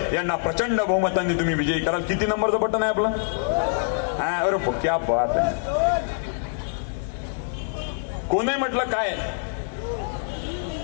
यांना प्रचंड बहुमतांनी तुम्ही विजयी कराल. किती नंबरचं बटन आहे आपलं. अरे क्या बात आहे. कोणी म्हटलं काय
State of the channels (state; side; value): silent; right; 60 dB below the other